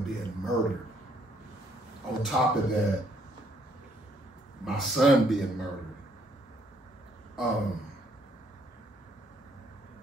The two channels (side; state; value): both; normal; correlation 0.68